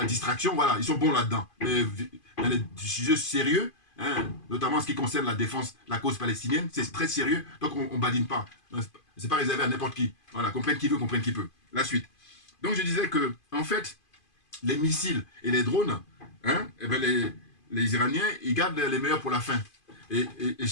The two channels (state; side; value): late; right; 2.5 ms